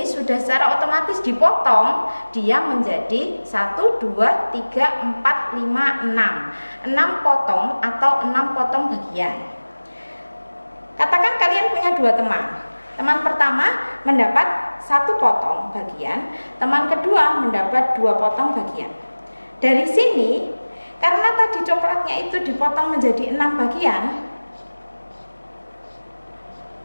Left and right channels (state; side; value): inverted; both; correlation -1.00